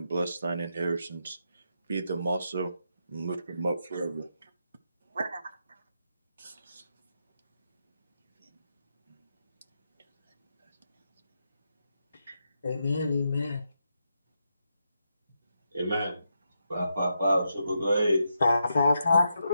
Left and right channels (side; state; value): both; inverted; correlation -0.83